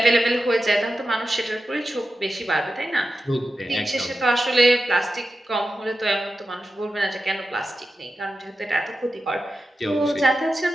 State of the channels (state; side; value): normal; both; correlation 0.91